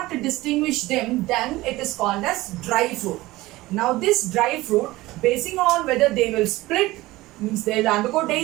distinguish them, then it is called as dry fruit. Now this dry fruit, basing on whether they will split, means they will undergo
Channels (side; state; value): left; quieter; 18.7 dB